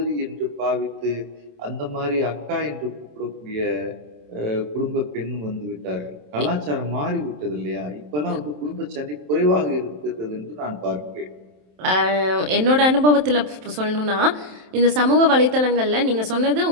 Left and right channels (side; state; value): left; late; 27 ms